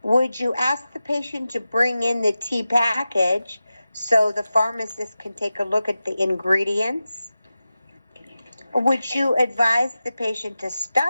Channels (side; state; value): both; inverted; correlation -0.94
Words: Would you ask the patient to bring in the tea package so the pharmacist can take a look at the ingredients? Would you advise the patient to